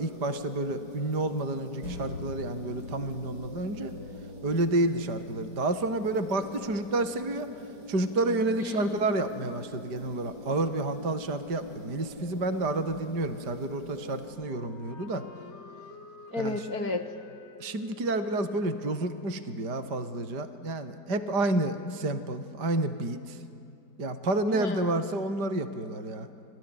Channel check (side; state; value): left; late; 5.0 ms